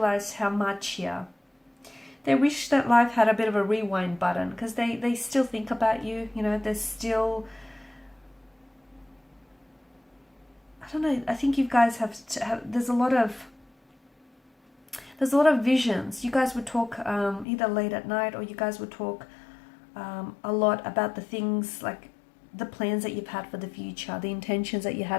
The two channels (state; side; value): drops out; right; at 17.4 s